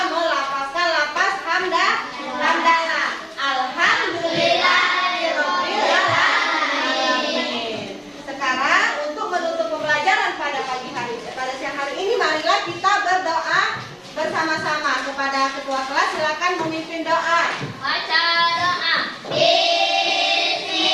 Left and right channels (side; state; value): both; identical; correlation 1.00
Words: melafazkan lafaz hamdalah. Alhamdulillahirabbil alamin. Sekarang untuk menutup pembelajaran pada siang hari ini, marilah kita berdoa bersama-sama. Kepada ketua kelas, silakan memimpin doa. Baca doa.